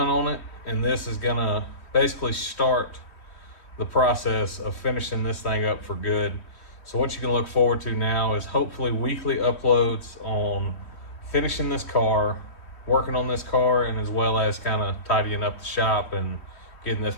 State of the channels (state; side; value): late; right; 3.1 ms